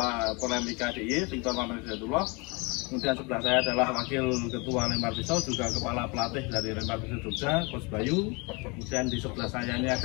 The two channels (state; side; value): quieter; right; 29.0 dB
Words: Porlemika DIY, Victor Maman Hidayatullah. Kemudian sebelah saya adalah Wakil Ketua Lempar Pisau, juga Kepala Pelatih dari Lempar Pisau Jogja, Coach Bayu. Kemudian di sebelah saya ini